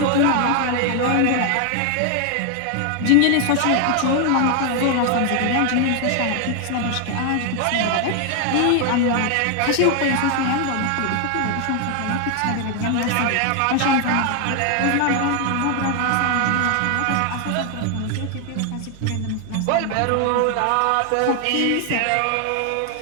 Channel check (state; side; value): different; both; correlation 0.00